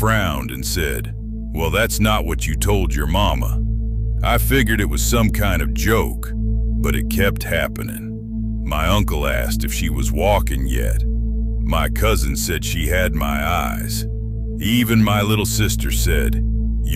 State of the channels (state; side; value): identical; both; correlation 1.00